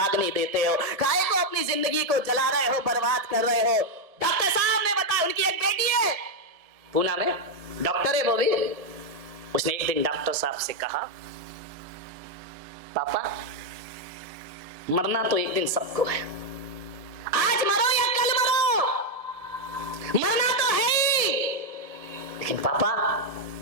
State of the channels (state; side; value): late; left; 1.7 ms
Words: देते हो, काहे को अपनी जिंदगी को जला रहे हो, बर्बाद कर रहे हो। डॉक्टर साहब ने बताया, उनकी एक बेटी है पूना में, डॉक्टर है वो भी। उसने एक दिन डॉक्टर साहब से कहा, पापा मरना तो एक दिन सबको है, आज मरो या कल मरो, मरना तो है ही। लेकिन पापा